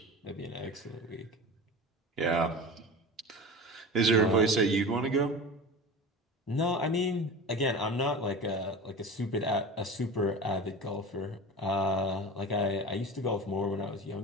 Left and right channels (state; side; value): normal; both; correlation 0.32